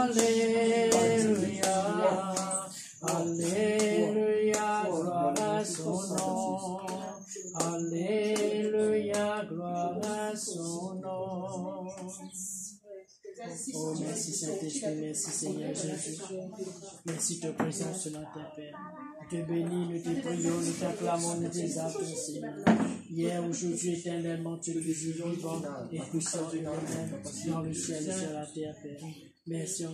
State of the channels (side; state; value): both; identical; correlation 1.00